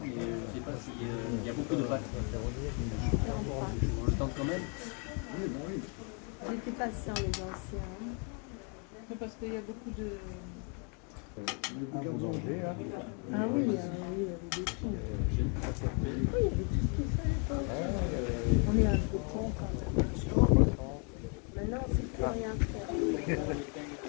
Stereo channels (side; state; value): right; quieter; 37.9 dB